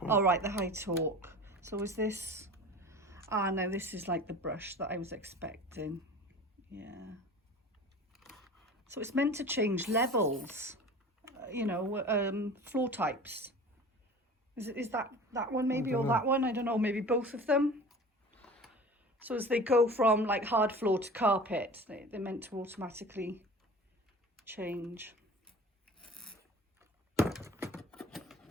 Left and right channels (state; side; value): normal; both; correlation 0.39